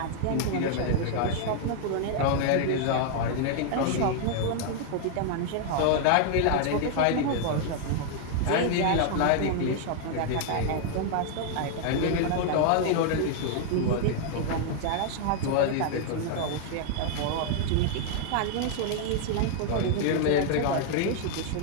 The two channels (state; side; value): different; both; correlation 0.00